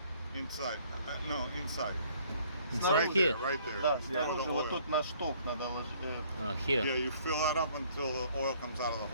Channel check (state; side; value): inverted; both; correlation -0.60